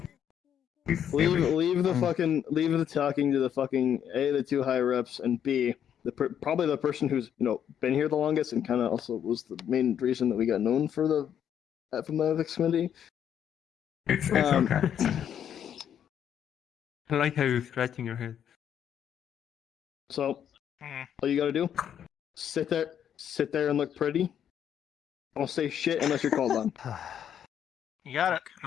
Leave the talking to the fucking A, the 2 higher ups, and B, probably the person who's been here the longest and kind of also was the main reason that we got known for from the ethics committee. It's okay. I like how you're scratching your head. So, all you gotta do, sit there and look pretty. Don't say shit unless you're called on. You got it.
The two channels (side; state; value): right; quieter; 9.2 dB